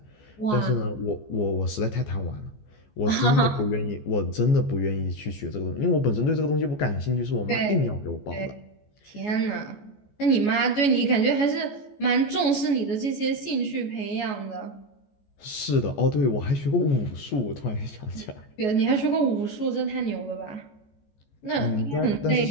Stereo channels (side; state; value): right; late; 14 ms